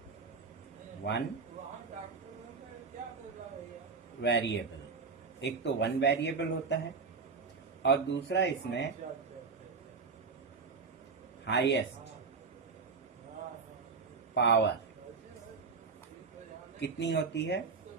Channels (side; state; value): left; quieter; 4.9 dB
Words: एक तो वन वेरिएबल होता है और दूसरा इसमें हाईएस्ट पावर कितनी होती है?